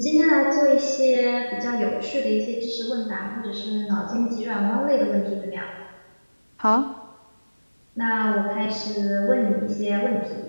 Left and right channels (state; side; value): inverted; both; correlation -1.00